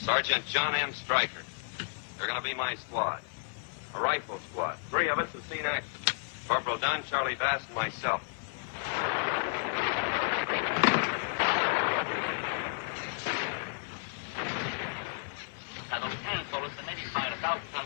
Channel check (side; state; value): right; silent; digital silence